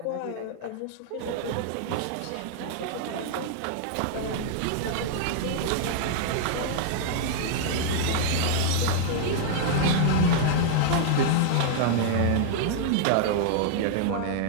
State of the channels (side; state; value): both; different; correlation -0.01